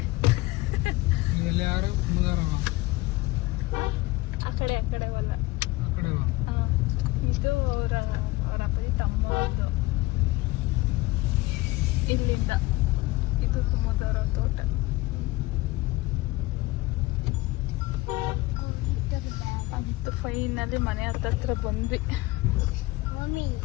ಇವೆಲ್ಲ ಯಾರು ಮುದಾರವ ಆ ಕಡೆ ಅವಲ್ಲ. ಕಡೆ ಇದು ಅವರ ಅಪ್ಪಿ ತಮ್ಮ ಇಲ್ಲಿಂದ ಇದು ಕುಮದವರ ತೋಟ. ಅಂತ ಫೈನಲ್ಲಿ ಮನೆ ಹತ್ತತ್ರ ಬಂದ್ವಿ. ಮಮ್ಮಿ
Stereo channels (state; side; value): quieter; right; 20.4 dB